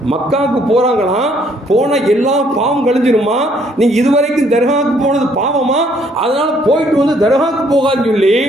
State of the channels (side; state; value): both; normal; correlation 0.65